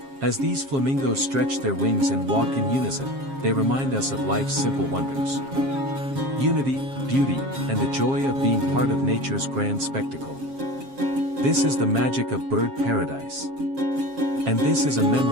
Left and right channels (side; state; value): left; late; 7.4 ms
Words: As these flamingos stretch their wings and walk in unison, they remind us of life's simple wonders. Unity, beauty, and the joy of being part of nature's grand spectacle. This is the magic of Bird Paradise. And this is a